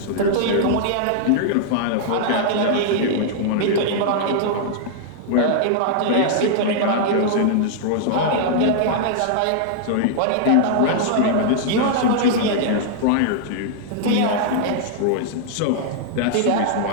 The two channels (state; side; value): different; both; correlation -0.01